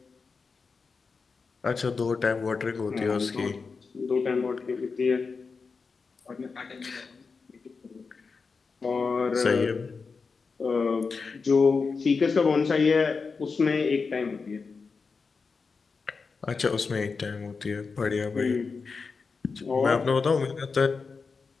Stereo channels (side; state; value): right; quieter; 4.8 dB